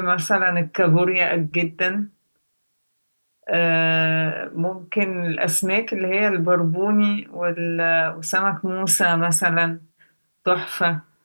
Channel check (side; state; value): both; inverted; correlation -1.00